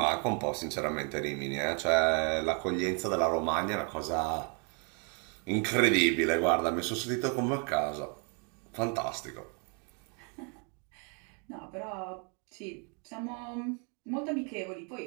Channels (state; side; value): quieter; left; 37.3 dB